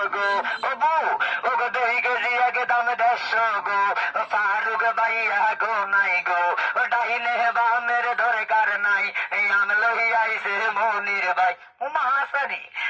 গো ও বউ ও গো 2 কেজি একদম 150 গো ফারুক ভাইয়া গো নাই গো ডাইনে বামের দরকার নাই আমি লই আইছে মনির ভাই ও মাসানি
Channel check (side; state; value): both; identical; correlation 1.00